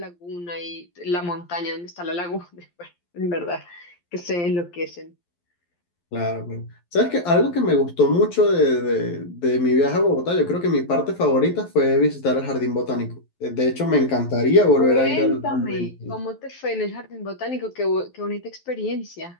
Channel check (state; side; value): late; right; 12 ms